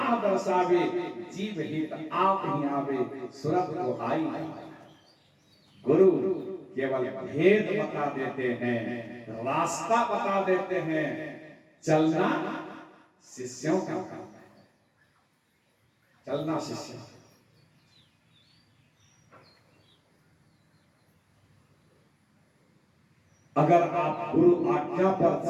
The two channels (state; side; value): identical; both; correlation 1.00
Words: दर्शावे, जीव हित आप ही आवे, सुरत को आई। गुरु केवल भेद बता देते हैं, रास्ता बता देते हैं, चलना शिष्यों का काम है, चलना शिष्यों। अगर आप गुरु आज्ञा पर